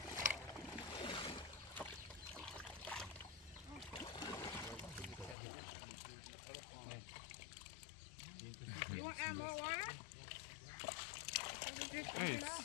You want to add more water?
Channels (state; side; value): drops out; right; at 5.4 s